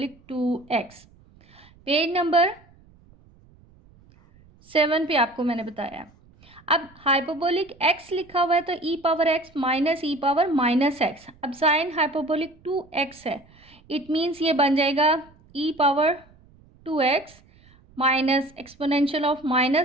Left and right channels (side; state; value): right; noise; rumble, 28 dB below the sound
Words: 2x। Page number 7 पे आपको मैंने बताया। अब हाइपरबोलिक x लिखा हुआ है तो e power x minus e power minus x. अब साइन हाइपरबोलिक 2x है, इट मीन्स ये बन जाएगा e power 2x minus exponential of